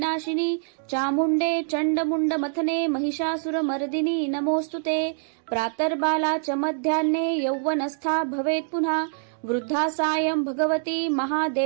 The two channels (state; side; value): silent; left; digital silence